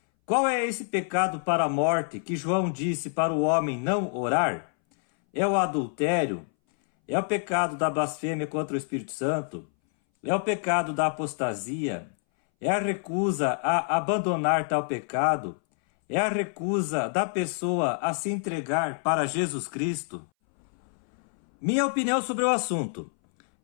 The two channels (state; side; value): silent; right; 60 dB below the other